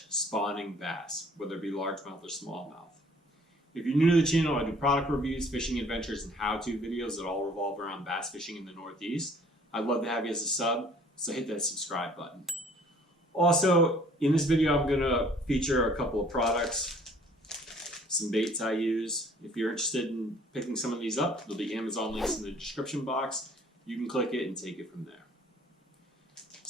spawning bass, whether it be largemouth or smallmouth. If you're new to the channel, I do product reviews, fishing adventures, and how-to videos that all revolve around bass fishing in the Northeast. I'd love to have you as a sub, so hit that subscribe button. Also, in this video, I'm going to feature a couple of products, some baits I use. If you're interested in picking some of these up, there'll be Amazon links in the description box. You can click it and take it from there.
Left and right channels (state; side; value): normal; both; correlation 0.56